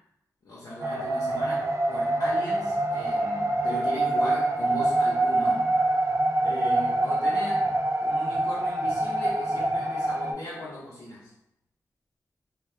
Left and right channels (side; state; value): both; normal; correlation 0.89